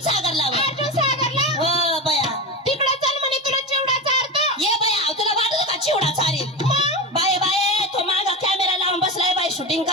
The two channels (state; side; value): normal; both; correlation 0.20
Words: सागरला बा. अर्जुन सागरला हो बया तिकडं चल म्हणे तुला चिवडा चारतो. ये बया तुला वाटत का चिवडा चारेल? मग बाय बाय तो मागा कॅमेरा लावून बसलाय बाय शूटिंग